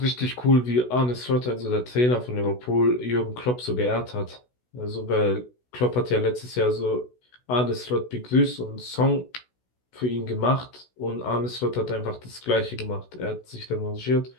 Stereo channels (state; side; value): late; right; 16 ms